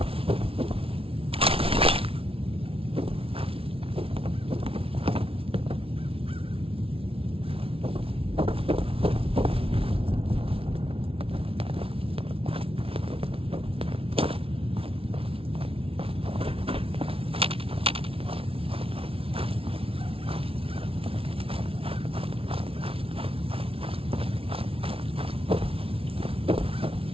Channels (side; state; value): left; late; 0.26 ms